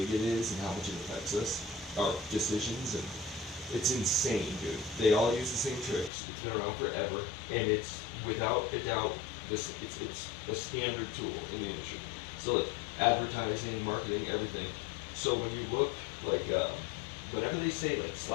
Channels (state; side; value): drops out; right; at 6.1 s